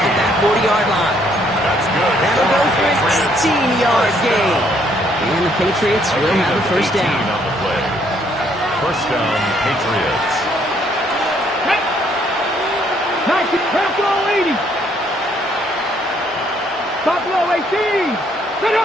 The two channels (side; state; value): both; normal; correlation 0.67